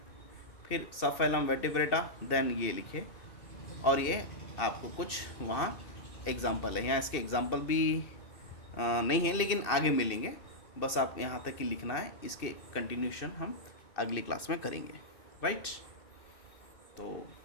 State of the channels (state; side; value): late; right; 2.6 ms